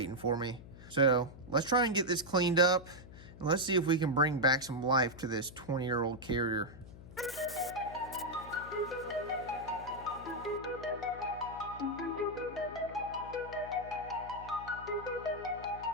for me. So let's try and get this cleaned up, and let's see if we can bring back some life to this 20-year-old carrier.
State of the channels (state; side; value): noise; left; hum, 16 dB below the sound